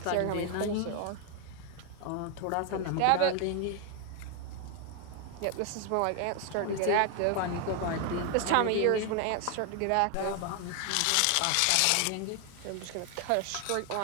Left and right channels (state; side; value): different; both; correlation 0.01